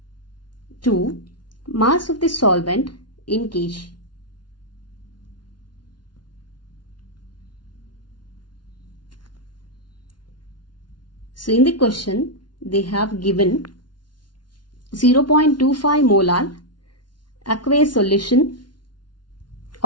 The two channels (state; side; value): late; right; 0.70 ms